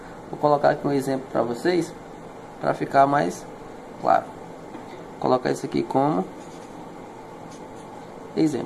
vou colocar aqui um exemplo para vocês, para ficar mais claro. Vou colocar isso aqui como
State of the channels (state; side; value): identical; both; correlation 1.00